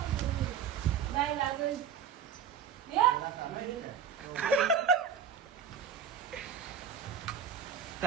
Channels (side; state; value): left; quieter; 7.5 dB